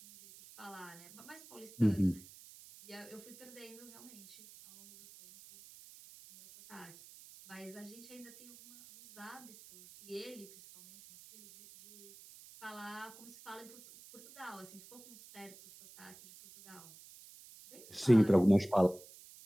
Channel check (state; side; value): noise; right; hiss, 19 dB below the sound